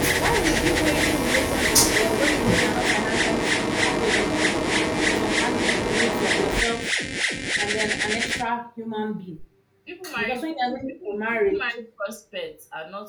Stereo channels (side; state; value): both; identical; correlation 1.00